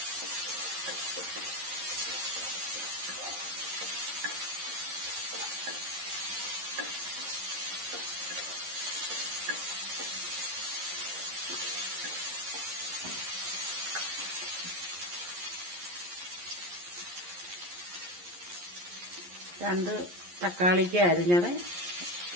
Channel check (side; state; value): left; late; 11 ms